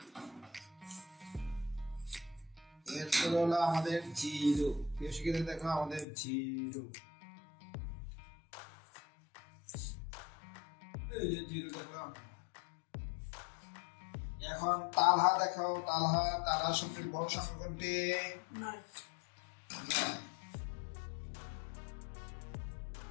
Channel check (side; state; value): right; drops out; at 6.1 s